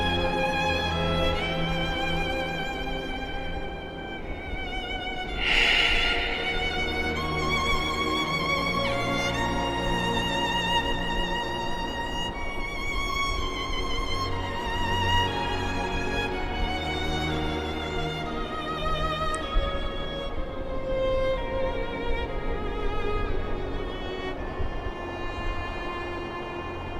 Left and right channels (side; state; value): both; identical; correlation 1.00